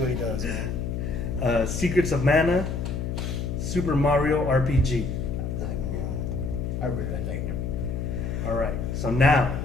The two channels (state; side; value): noise; left; hum, 3 dB below the sound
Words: he does, man. Secrets of Mana, Super Mario RPG. I really like that game. All right, so now